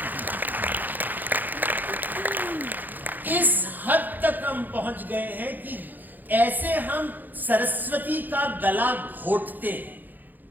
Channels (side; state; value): left; late; 0.086 ms